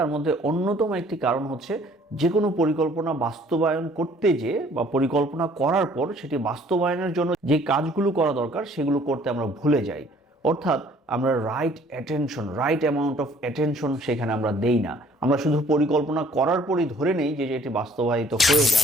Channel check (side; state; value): both; normal; correlation 0.57